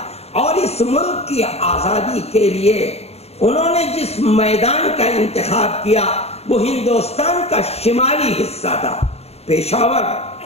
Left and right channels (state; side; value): late; right; 0.30 ms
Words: اور اس ملک کی آزادی کے لیے انہوں نے جس میدان کا انتخاب کیا وہ ہندوستان کا شمالی حصہ تھا، پشاور